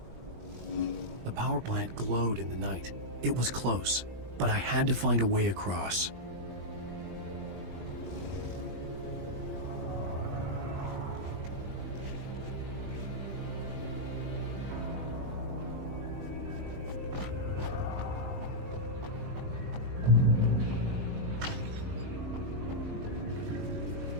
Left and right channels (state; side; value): late; left; 20 ms